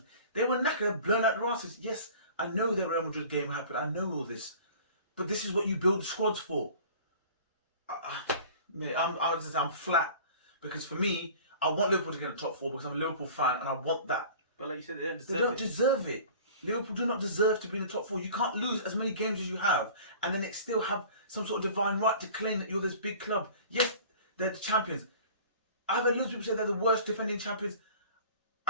They were knackered, blown out the asses. Yes, I know the Real Madrid game happened. I know all this, but this is what you build squads for. Mate, I'm flat because for me, I want Liverpool to get in the top 4 because I'm a Liverpool fan and I want that. But like you said, they don't deserve They don't it. deserve it. Liverpool do not deserve to be in the top 4. You can't lose as many games as you have and then it still have some sort of divine right to claim that you're this big club. Yes, they're the champions. I've heard loads of people say they're the worst defending champions.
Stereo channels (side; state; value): both; inverted; correlation -0.43